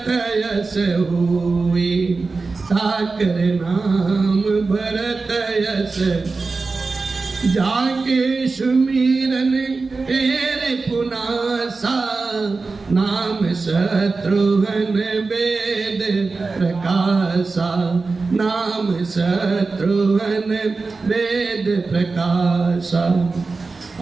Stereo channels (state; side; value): quieter; left; 4.0 dB